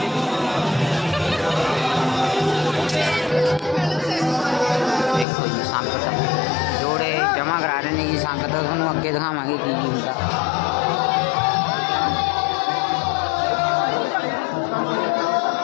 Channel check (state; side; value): drops out; right; at 5.2 s